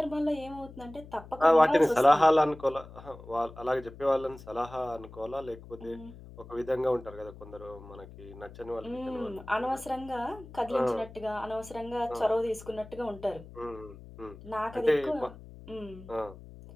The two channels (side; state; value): left; noise; hum, 17 dB below the sound